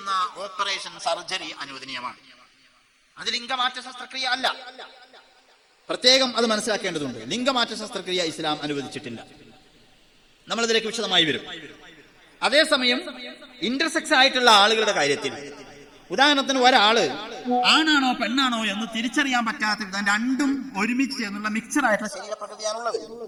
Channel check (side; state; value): both; identical; correlation 1.00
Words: ഓപ്പറേഷൻ, സർജറി അനുവദനീയമാണ്. അത് ലിംഗമാറ്റ ശസ്ത്രക്രിയ അല്ല. പ്രത്യേകം അത് മനസ്സിലാക്കേണ്ടതുണ്ട്. ലിംഗമാറ്റ ശസ്ത്രക്രിയ ഇസ്ലാം അനുവദിച്ചിട്ടില്ല. നമ്മളതിലേക്ക് വിശദമായി വരും. അതേസമയം ഇന്റർസെക്സ് ആയിട്ടുള്ള ആളുകളുടെ കാര്യത്തിൽ, ഉദാഹരണത്തിന് ഒരാള് ആണാണോ പെണ്ണാണോ എന്ന് തിരിച്ചറിയാൻ പറ്റാത്ത വിധം രണ്ടും ഒരുമിച്ച് ചേർന്നുള്ള മിക്സർ ആയിട്ടുള്ള ശരീരപ്രകൃതിയാണുള്ളത്.